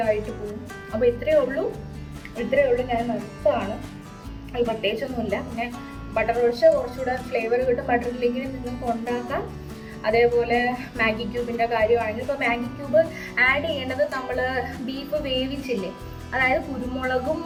പോകും. അപ്പോൾ ഇത്രയേ ഉള്ളൂ. ഞാൻ നിർത്തുകയാണ്. അത് പ്രത്യേകിച്ചൊന്നുമില്ല. പിന്നെ ബട്ടർ ഒഴിച്ച് കുറച്ചുകൂടെ ഫ്ലേവർ കിട്ടും. ബട്ടർ ഇല്ലെങ്കിൽ നിങ്ങൾക്ക് ഉണ്ടാക്കാം. അതേപോലെ മാഗി ക്യൂബിൻ്റെ കാര്യമാണെങ്കിൽ ഇപ്പോൾ മാഗി ക്യൂബ് ആഡ് ചെയ്യേണ്ടത് നമ്മൾ ബീഫ് വേവിച്ചില്ലേ, അതായത് കുരുമുളകും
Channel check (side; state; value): both; identical; correlation 1.00